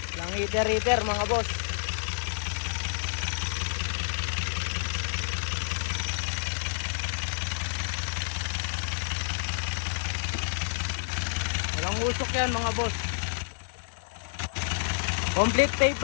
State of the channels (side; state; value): right; silent; 58 dB below the other